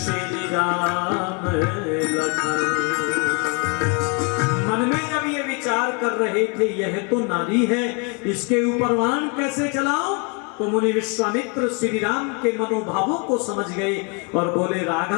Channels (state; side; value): quieter; right; 34.3 dB